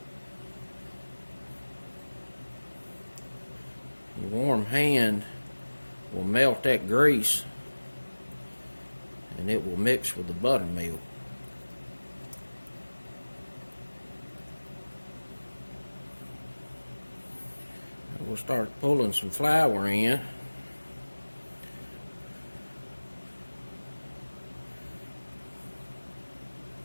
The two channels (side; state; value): both; inverted; correlation -1.00